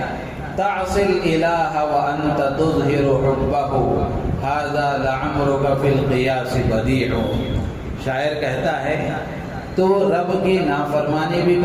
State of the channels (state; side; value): identical; both; correlation 1.00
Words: تعصی الالہ وانت تظہر حبہ ھذا لعمرک فی القیاس بدیع۔ شاعر کہتا ہے تو رب کی نافرمانی بھی